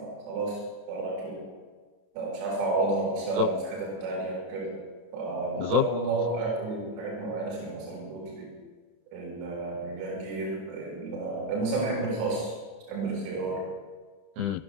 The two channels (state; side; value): late; left; 30 ms